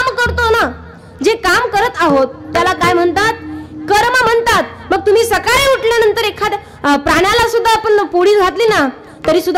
करतो ना, जे काम करत आहोत त्याला काय म्हणतात? कर्म म्हणतात। मग तुम्ही सकाळी उठल्यानंतर एखाद्या प्राण्याला सुद्धा आपण पोळी घातली ना तरी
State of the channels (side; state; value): both; identical; correlation 1.00